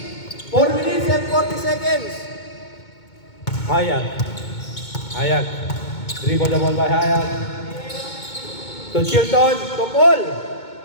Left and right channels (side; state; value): right; late; 2.2 ms